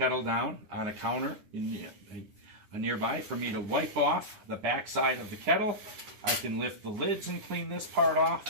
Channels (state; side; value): late; left; 9.7 ms